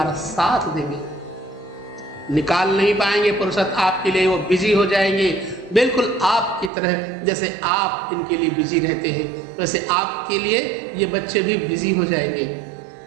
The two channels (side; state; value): left; drops out; at 6.7 s